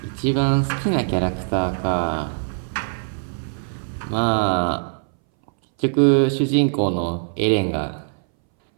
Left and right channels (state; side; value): silent; left; 63 dB below the other